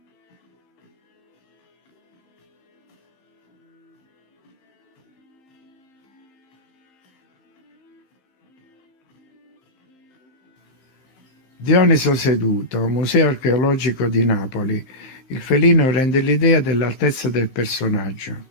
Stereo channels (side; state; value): right; late; 15 ms